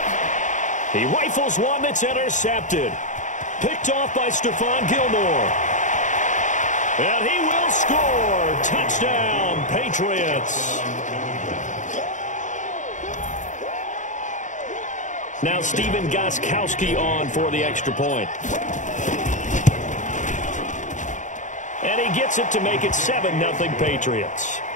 He rifles one that's intercepted. Picked off by Stephon Gilmore. And he will score. Touchdown, Patriots. Now Stephen Gostkowski on for the extra point. And he gets it to make it 7-0 Patriots.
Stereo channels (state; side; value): late; right; 0.36 ms